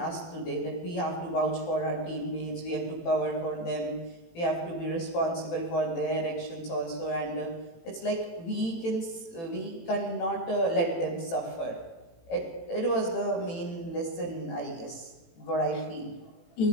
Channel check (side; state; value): right; late; 18 ms